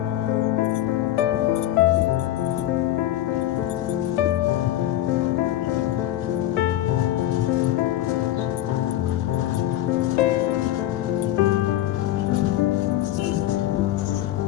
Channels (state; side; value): quieter; right; 13.7 dB